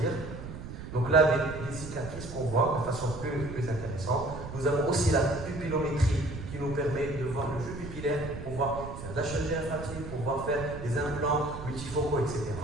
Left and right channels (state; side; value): noise; right; rumble, 10 dB below the sound